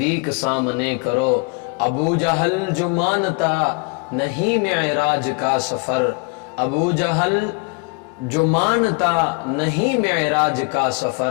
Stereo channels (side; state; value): right; quieter; 32.9 dB